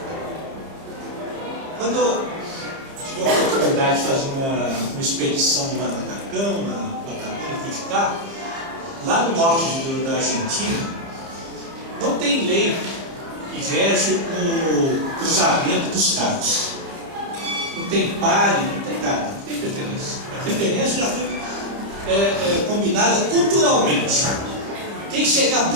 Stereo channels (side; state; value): left; late; 30 ms